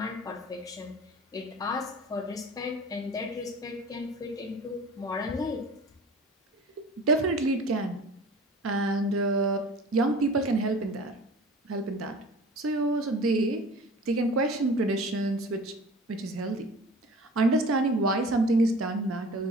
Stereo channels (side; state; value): both; normal; correlation 0.42